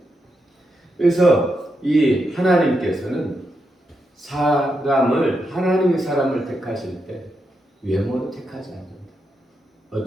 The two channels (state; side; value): normal; both; correlation 0.84